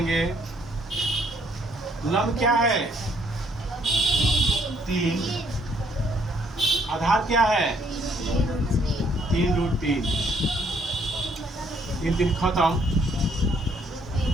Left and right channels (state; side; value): normal; both; correlation 0.67